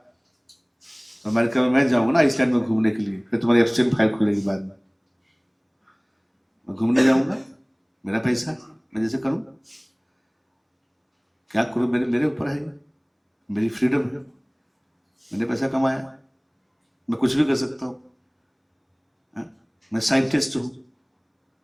अमेरिका में मैं जाऊंगा ना आइसलैंड में घूमने के लिए, फिर तुम्हारी एब्स्टेंट फाइल खुलेगी बाद में. मैं घूमने जाऊंगा, मेरा पैसा, मैं जैसे करूं, क्या करूं, मेरे ऊपर है, मेरी फ्रीडम है, मैंने पैसा कमाया, मैं कुछ भी कर सकता हूं. मैं साइंटिस्ट हूं,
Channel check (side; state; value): both; identical; correlation 1.00